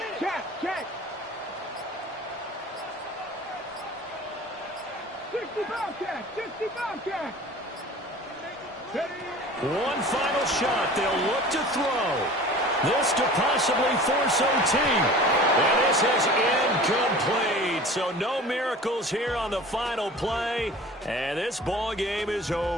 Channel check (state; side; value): normal; both; correlation 0.41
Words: Catch! Catch! 60 Bobcat! 60 Bobcat! One final shot. They'll look to throw. This to possibly force OT. And this is incomplete. So no miracles here on the final play. And this ball game is